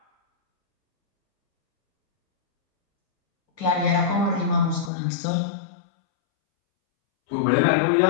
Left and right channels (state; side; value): drops out; right; at 4.9 s